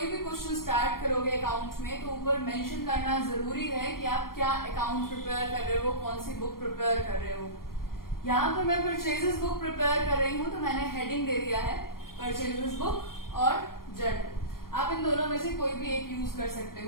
भी क्वेश्चन स्टार्ट करोगे अकाउंट में तो ऊपर मेंशन करना जरूरी है कि आप क्या अकाउंट प्रिपेयर कर रहे हो, कौन सी बुक प्रिपेयर कर रहे हो। यहाँ पर मैं परचेजेस बुक प्रिपेयर कर रही हूँ तो मैंने हेडिंग दे दिया है परचेजेस बुक और जर्नल। आप इन दोनों में से कोई भी एक यूज कर सकते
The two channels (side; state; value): right; late; 0.92 ms